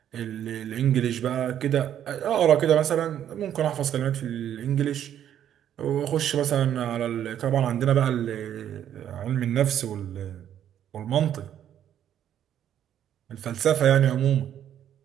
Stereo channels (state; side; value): quieter; left; 10.3 dB